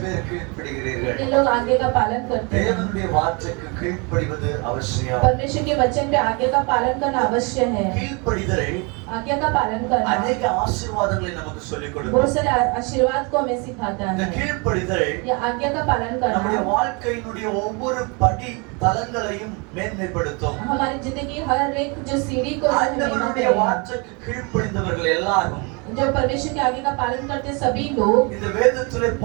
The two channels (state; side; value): quieter; left; 31.1 dB